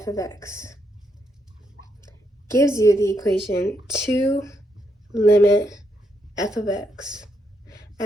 of x gives you the equation 2 limit f of x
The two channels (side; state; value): both; normal; correlation 0.78